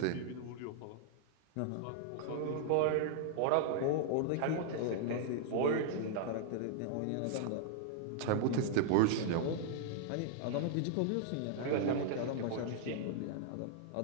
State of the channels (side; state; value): both; different; correlation -0.01